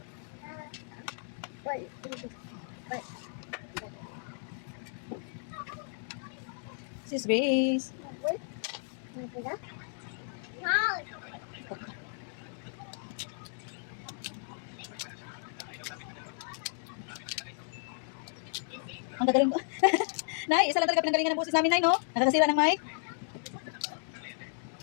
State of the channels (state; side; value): silent; right; digital silence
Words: Sis Grace. Ang gagaling ko. Nay, isa lang talaga pinanggalingan ng boses namin, Nay, no? Nakakasira ng mic.